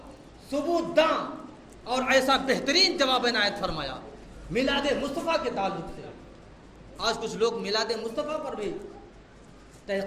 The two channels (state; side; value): identical; both; correlation 1.00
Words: ثبوت داں اور ایسا بہترین جواب عنایت فرمایا میلاد مصطفیٰ کے تعلق سے۔ آج کچھ لوگ میلاد مصطفیٰ پر بھی